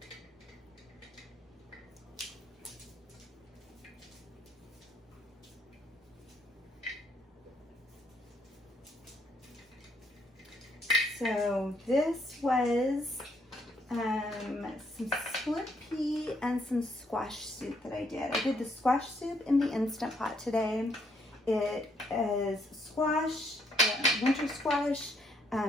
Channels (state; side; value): normal; both; correlation 0.71